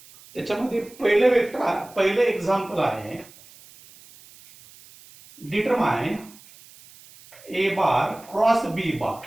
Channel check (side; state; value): right; noise; hiss, 23 dB below the sound